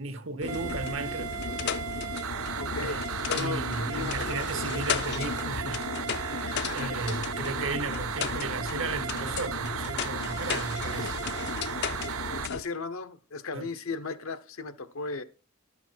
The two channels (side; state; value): both; normal; correlation 0.11